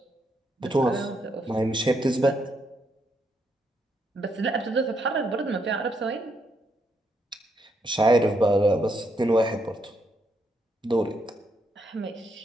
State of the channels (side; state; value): both; normal; correlation 0.77